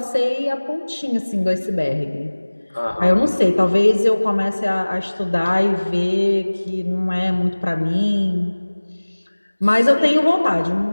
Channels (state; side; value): inverted; both; correlation -1.00